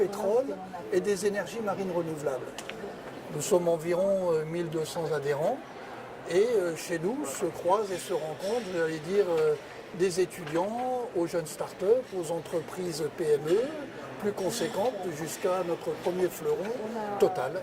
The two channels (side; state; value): both; identical; correlation 1.00